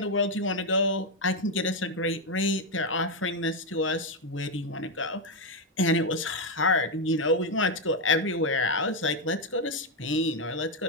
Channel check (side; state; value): both; normal; correlation 0.04